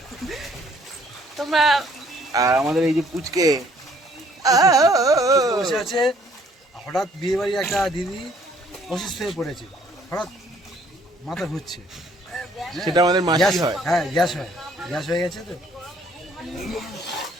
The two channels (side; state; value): both; normal; correlation 0.61